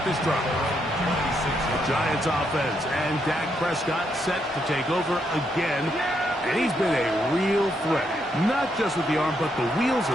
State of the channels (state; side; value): normal; both; correlation 0.77